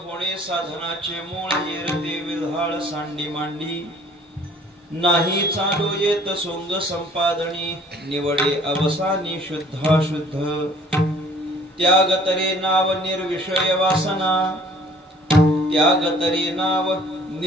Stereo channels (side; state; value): both; normal; correlation 0.54